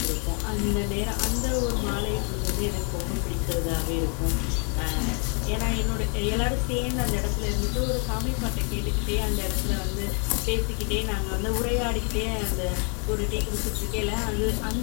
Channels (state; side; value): quieter; right; 38.2 dB